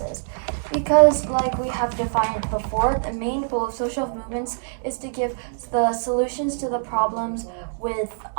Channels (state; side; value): silent; left; digital silence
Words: Because, like we have defined before, the main goal of social movements is to give the solutions to the problems with